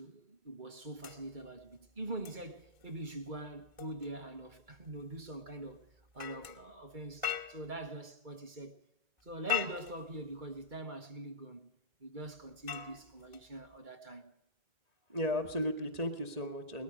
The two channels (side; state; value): left; late; 2.3 ms